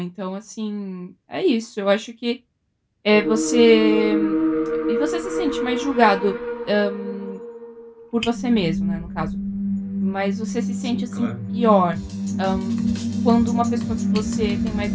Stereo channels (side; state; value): both; identical; correlation 1.00